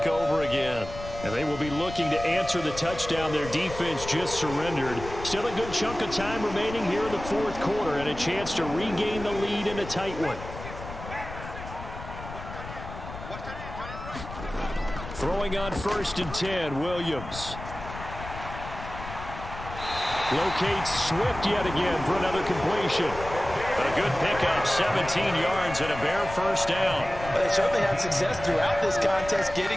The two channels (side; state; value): left; noise; rumble, 11 dB below the sound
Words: over again. And they will be looking to answer the touchdown their defense just surrendered. Still a good chunk of time remaining here in the fourth quarter and a chance to regain the lead in a tight one. Throwing on 1st and 10, Williams. Locates Swift yet again for another completion. But a good pickup, 17 yards and a Bear first down. But they certainly had success throughout this contest,